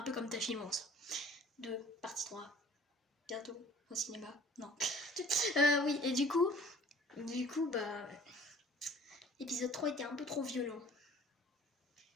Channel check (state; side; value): normal; both; correlation 0.50